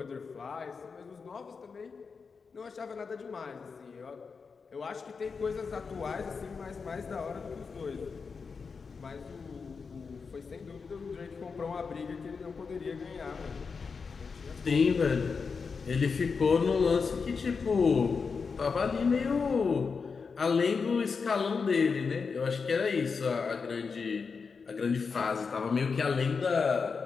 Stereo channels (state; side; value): quieter; right; 5.2 dB